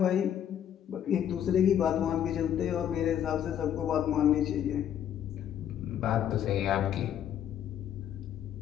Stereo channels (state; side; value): quieter; right; 9.9 dB